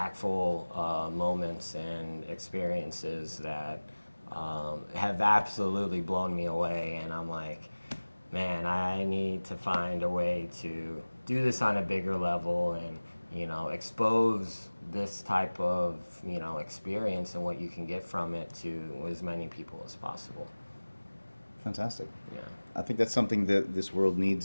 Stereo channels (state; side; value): inverted; both; correlation -1.00